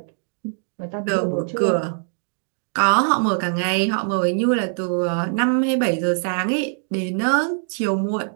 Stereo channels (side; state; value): left; silent; 64 dB below the other